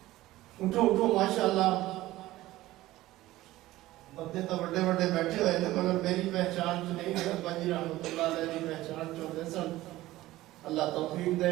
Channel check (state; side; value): quieter; left; 16.7 dB